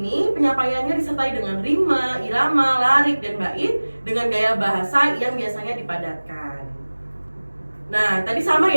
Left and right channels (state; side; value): inverted; both; correlation -1.00